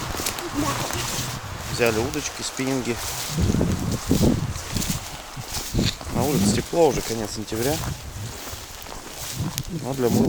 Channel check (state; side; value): identical; both; correlation 1.00